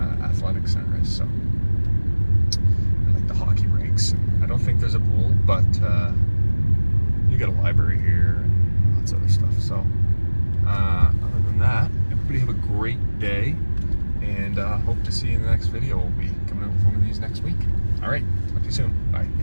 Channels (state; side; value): inverted; both; correlation -1.00